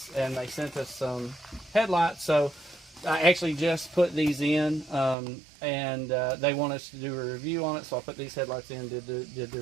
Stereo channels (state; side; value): drops out; left; at 5.2 s